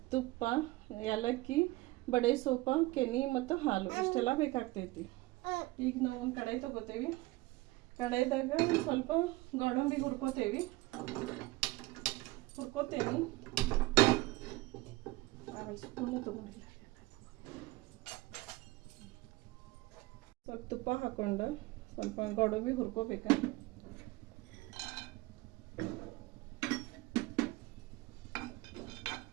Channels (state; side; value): quieter; left; 20.6 dB